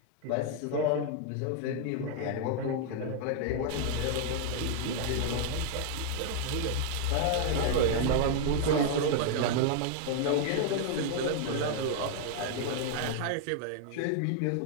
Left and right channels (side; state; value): both; different; correlation 0.00